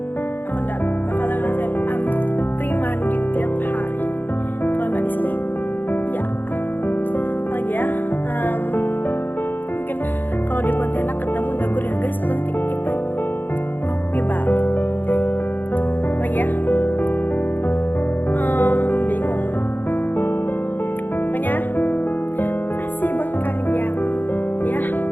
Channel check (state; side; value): late; right; 0.090 ms